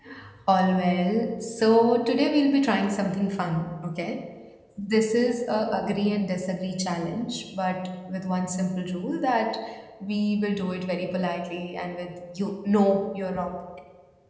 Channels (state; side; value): identical; both; correlation 1.00